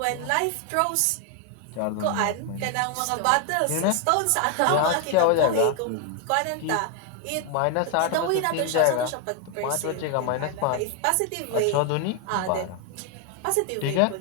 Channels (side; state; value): both; different; correlation 0.01